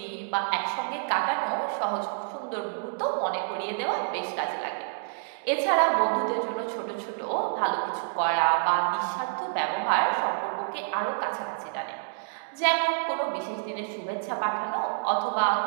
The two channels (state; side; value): silent; left; digital silence